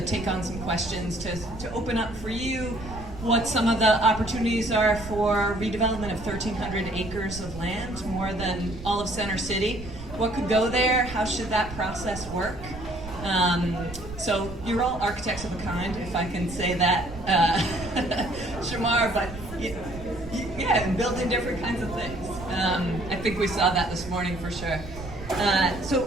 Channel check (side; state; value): right; noise; rumble, 12 dB below the sound